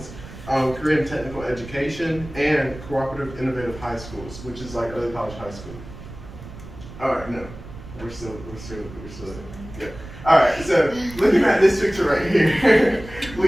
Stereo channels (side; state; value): right; noise; rumble, 15 dB below the sound